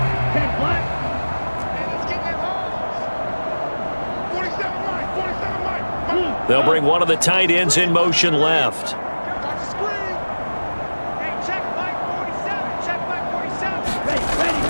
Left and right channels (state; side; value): inverted; both; correlation -1.00